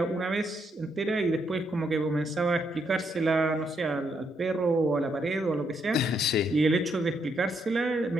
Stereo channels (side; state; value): both; normal; correlation 0.76